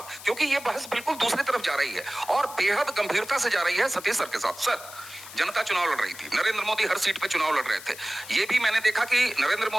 क्योंकि ये बहस बिल्कुल दूसरी तरफ जा रही है और बेहद गंभीरता से जा रही है सतीश सर के साथ। सर, जनता चुनाव लड़ रही थी, नरेंद्र मोदी हर सीट पे चुनाव लड़ रहे थे। ये भी मैंने देखा कि नरेंद्र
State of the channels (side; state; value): left; noise; hiss, 15 dB below the sound